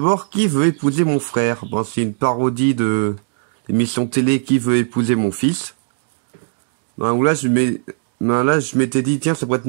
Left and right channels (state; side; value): silent; left; digital silence